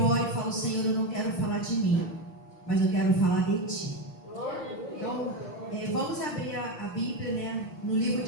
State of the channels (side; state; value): right; late; 5.7 ms